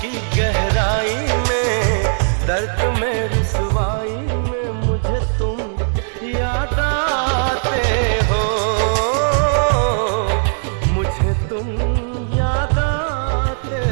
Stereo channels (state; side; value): silent; left; digital silence